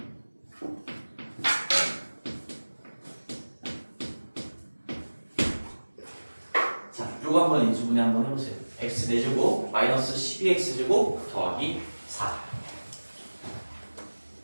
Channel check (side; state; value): both; inverted; correlation -1.00